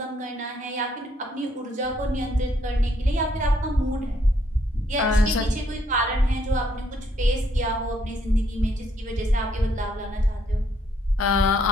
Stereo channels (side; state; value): both; normal; correlation 0.70